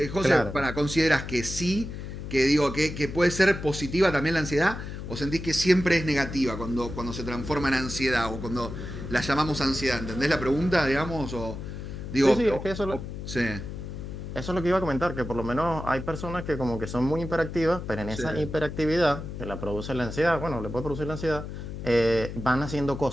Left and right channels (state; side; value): noise; left; hum, 8 dB below the sound